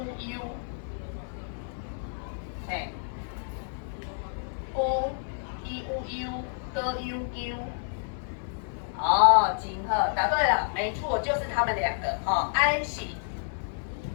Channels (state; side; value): silent; right; digital silence